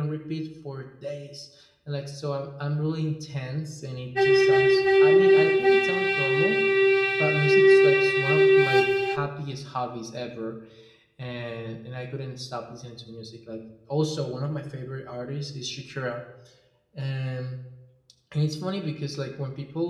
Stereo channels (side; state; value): both; identical; correlation 1.00